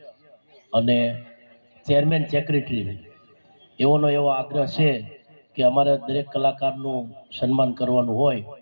અને ચેરમેન સેક્રેટરી એવો આગ્રહ છે કે અમારે દરેક કલાકારનું સન્માન કરવાનું હોય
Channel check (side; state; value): both; inverted; correlation -1.00